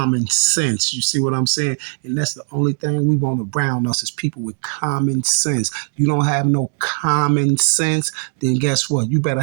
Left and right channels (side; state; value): left; silent; 56 dB below the other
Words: sense. You see what I'm saying? And that's the only thing we want around us is people with common sense. You don't have no common sense, then guess what? You better